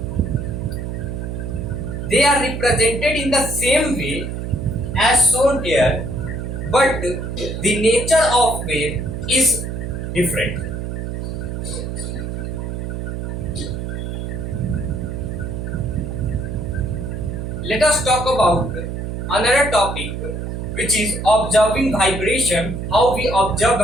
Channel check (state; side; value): noise; right; hum, 5 dB below the sound